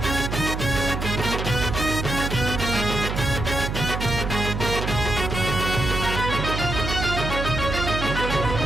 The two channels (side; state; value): right; noise; hum, 3 dB below the sound